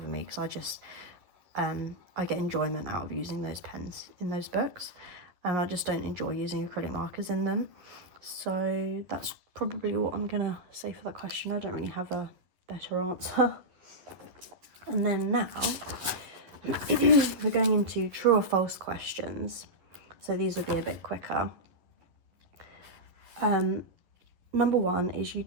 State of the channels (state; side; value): late; left; 11 ms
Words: me, because I just I get enjoyment out of using those pens in those books, and I just don't enjoy using acrylic markers in them. So that's probably what I'm gonna say for that question. I don't really have a better answer. And then now we're going into true or false questions, so these will be a bit quicker. Number 1 is, you